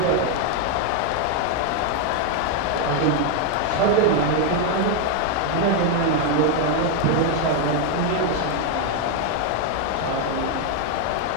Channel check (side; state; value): both; different; correlation 0.01